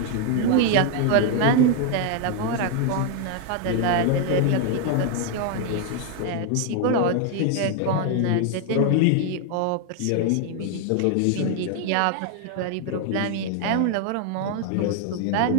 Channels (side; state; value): both; different; correlation 0.01